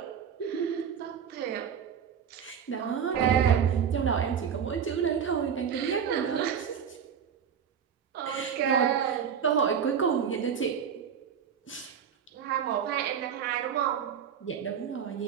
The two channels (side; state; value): left; quieter; 7.8 dB